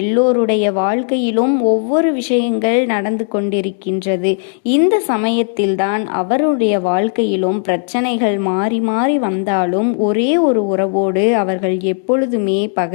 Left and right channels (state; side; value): silent; right; digital silence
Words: வாழ்க்கையிலும் ஒவ்வொரு விஷயங்கள் நடந்து கொண்டிருக்கின்றது. இந்த சமயத்தில்தான் அவருடைய வாழ்க்கையிலும் பிரச்சனைகள் மாறி மாறி வந்தாலும் ஒரே ஒரு உறவோடு அவர்கள் எப்பொழுதுமே